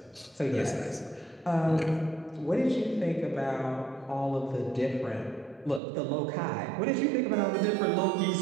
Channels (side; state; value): left; drops out; at 5.8 s